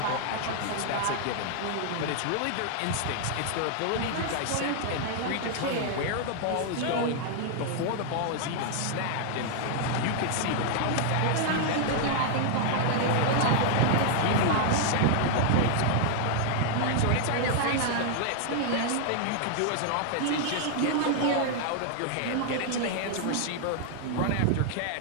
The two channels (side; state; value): both; different; correlation 0.00